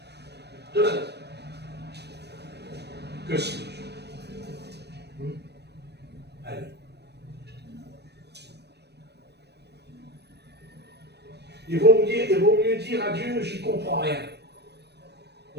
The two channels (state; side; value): late; left; 0.49 ms